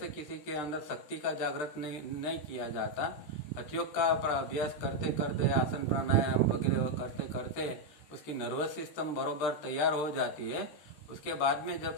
किसी के अंदर शक्ति का जागृत नहीं किया जाता। हठयोग का अभ्यास करते करते, आसन प्राणायाम वगैरह करते करते उसकी नर्वस सिस्टम बरोबर तैयार हो जाती है। उसके बाद में जब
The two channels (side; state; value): right; late; 13 ms